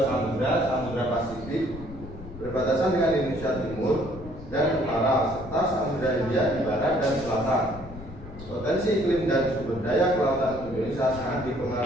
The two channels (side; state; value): left; noise; rumble, 15 dB below the sound